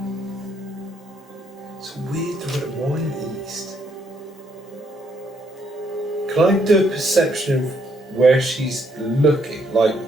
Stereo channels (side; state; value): both; normal; correlation 0.71